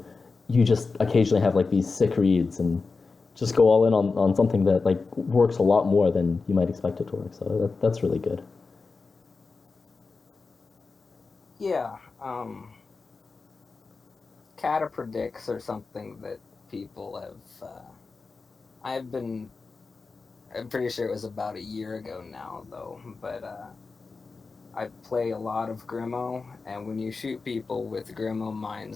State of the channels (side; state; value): right; quieter; 4.3 dB